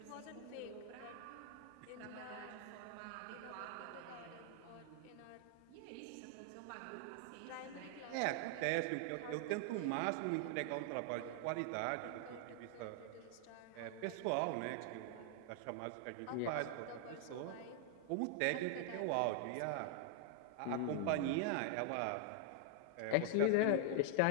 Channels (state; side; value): different; both; correlation 0.00